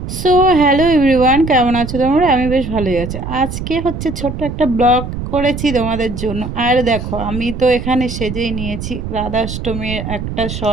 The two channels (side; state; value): right; noise; rumble, 7 dB below the sound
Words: So hello everyone, কেমন আছো তোমরা? আমি বেশ ভালোই আছি। আজকে হচ্ছে ছোট্ট একটা ব্লগ করেছি তোমাদের জন্য। আর দেখো, আমি তো এখানে সেজেই নিয়েছি রাধাষ্টমীর একটা